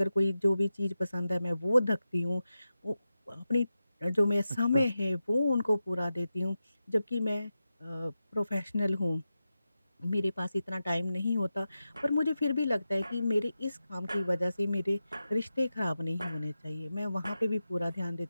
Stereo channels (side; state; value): both; inverted; correlation -0.92